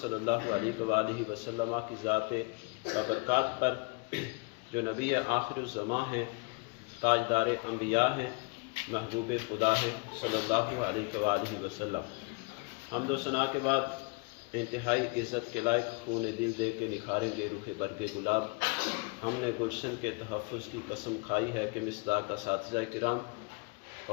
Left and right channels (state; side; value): quieter; right; 29.6 dB